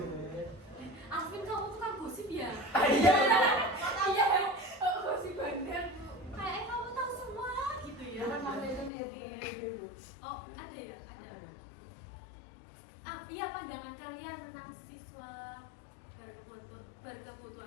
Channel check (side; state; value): right; drops out; at 8.9 s